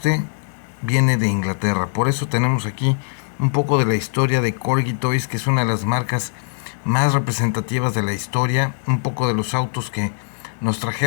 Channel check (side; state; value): right; silent; digital silence